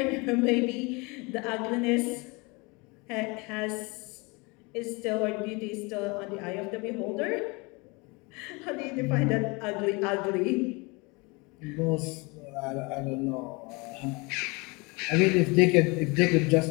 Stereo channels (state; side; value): quieter; right; 27.6 dB